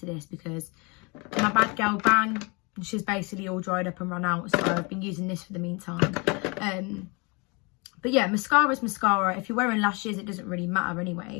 this because my Bad Girl Bang, she's basically all dried up and run out. So I've been using this for the meantime. But yeah, mascara is mascara. If you're wearing lashes, it doesn't really matter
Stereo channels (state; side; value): quieter; right; 29.8 dB